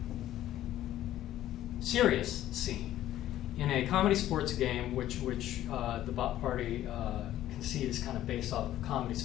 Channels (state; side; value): quieter; right; 13.1 dB